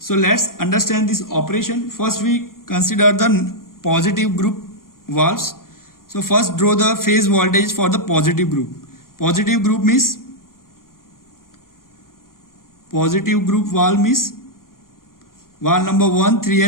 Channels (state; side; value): late; right; 0.91 ms